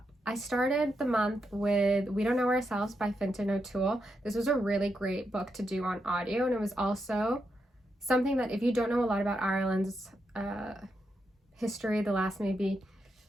I started the month with We Don't Know Ourselves by Fintan O'Toole. This was a really great book to do on audio, and it was also something that if you don't know a lot about Ireland's history, the last maybe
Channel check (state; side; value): normal; both; correlation 0.83